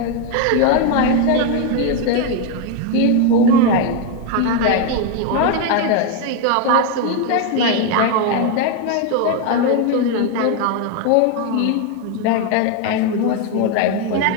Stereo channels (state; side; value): different; both; correlation 0.01